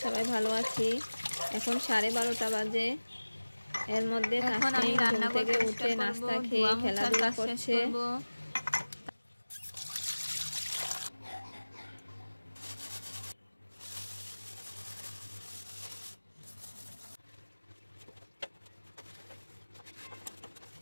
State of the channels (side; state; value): both; inverted; correlation -1.00